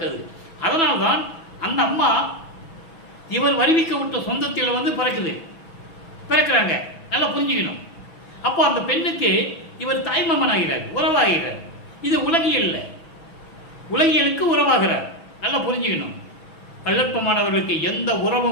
அதனால்தான் அந்த அம்மா இவர் வருவிக்க விட்ட சொந்தத்தில் வந்து பிறக்கிறாங்க. நல்லா புரிஞ்சுக்கணும். அப்போ அந்த பெண்ணுக்கு இவர் தாய்மாமன் ஆகிறார், உறவாகிறார். இது உலகியல்ல, உலகியலுக்கு உறவாகிறார். நல்லா புரிஞ்சுக்கணும். வல்லற்பமானவர்களுக்கு எந்த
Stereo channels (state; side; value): late; right; 6.1 ms